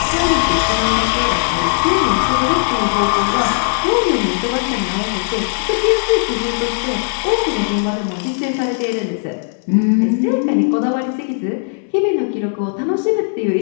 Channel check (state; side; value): silent; right; digital silence